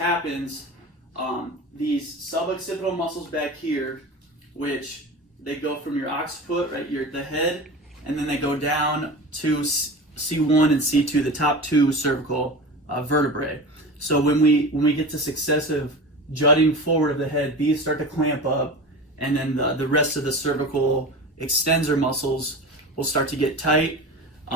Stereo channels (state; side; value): normal; both; correlation 0.31